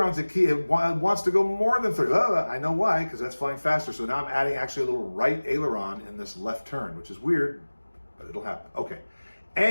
It wants to go more than 30. I know why, because that's flying faster. So now I'm adding actually a little right aileron in this left turn, which is weird, but it'll happen. Okay.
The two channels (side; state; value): both; inverted; correlation -1.00